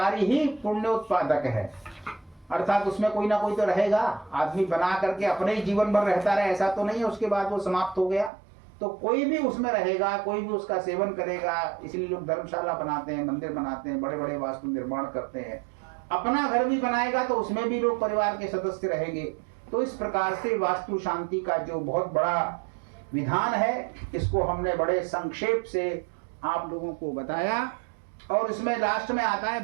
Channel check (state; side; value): drops out; left; at 8.3 s